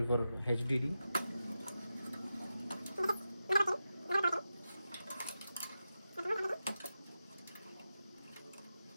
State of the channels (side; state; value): both; inverted; correlation -0.91